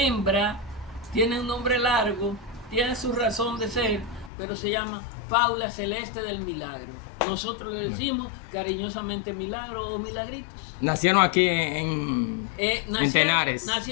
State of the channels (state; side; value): drops out; right; at 4.3 s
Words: tiene un nombre largo, tiene su razón de ser, pero se llama Paula Celeste del Milagro. Nosotros le decimos cariñosamente Milagro o Milagritos. Nacieron aquí en Tenares.